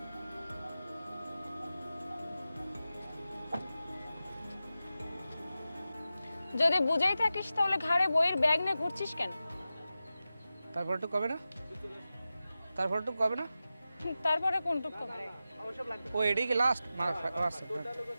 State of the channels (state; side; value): inverted; both; correlation -0.93